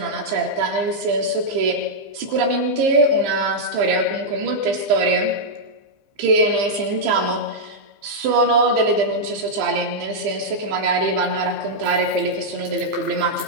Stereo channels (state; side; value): late; left; 15 ms